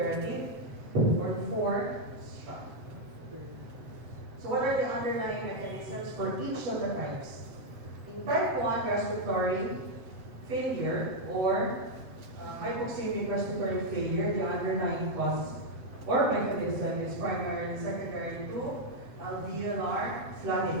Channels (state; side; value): late; left; 7.4 ms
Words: Or 4, shock. So what are the underlying mechanisms for each of the types? In type 1 respiratory failure or hypoxemic respiratory failure, the underlying cause or mechanism is primarily secondary to alveolar